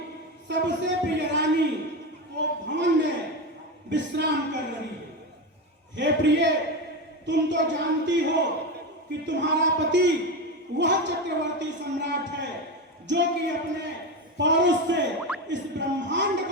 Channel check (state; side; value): normal; both; correlation 0.18